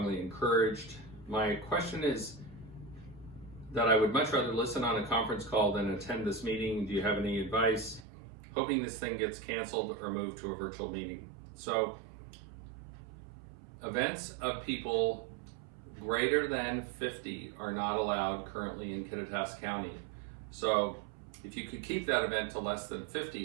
encouraged. My question is that I would much rather listen on a conference call than attend this meeting. Do you have any advice? Hoping this thing gets canceled or moved to a virtual meeting. So, events of people greater than 50 are not allowed currently in Kittitas County. So if you could keep that event to less than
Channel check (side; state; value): left; drops out; at 8.1 s